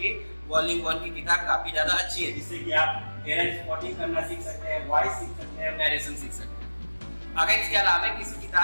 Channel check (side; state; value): both; inverted; correlation -1.00